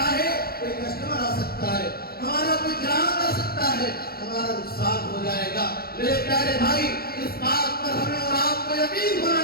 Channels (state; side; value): late; right; 0.44 ms